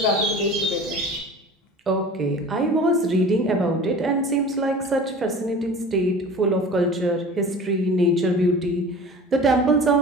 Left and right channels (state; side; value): normal; both; correlation 0.40